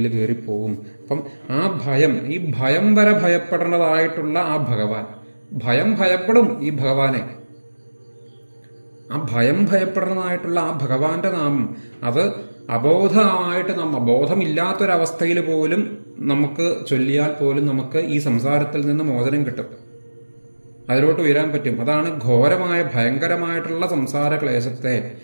കയറിപ്പോവും. അപ്പം ആ ഭയം, ഈ ഭയം വരെ ഭയപ്പെടേണ്ടതായിട്ടുള്ള ആ ഭഗവാൻ, ഭയപ്പെടും ഈ ഭഗവാനെ. ആ ഭയപ്പെടുന്നതായിട്ടുള്ള ആ ഭഗവാന്റെ നാമം, അത് അബോധമായിട്ട് ബോധമില്ലാത്തൊരവസ്ഥയിൽ പോലും നമുക്ക് ചൊല്ലിയാൽ പോലും നമുക്ക് ഈ സംസാരത്തിൽ നിന്ന് മോചനം കിട്ടും, അതിലോട്ട് ഉയരാൻ പറ്റും. അതാണ് ഘോരമായ ഭയങ്കരമായിട്ടുള്ള സംസാര ക്ലേശത്തെ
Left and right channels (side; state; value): both; inverted; correlation -1.00